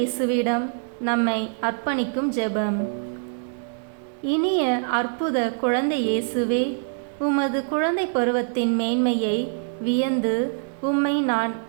நம்மை அர்ப்பணிக்கும் ஜெபம். இனிய அற்புத குழந்தை இயேசுவே, உமது குழந்தை பருவத்தின் மேன்மையை வியந்து உம்மை நான்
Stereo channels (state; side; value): silent; left; digital silence